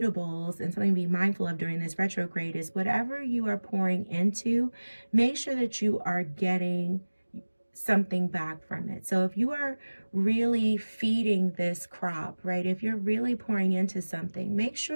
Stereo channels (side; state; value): both; inverted; correlation -1.00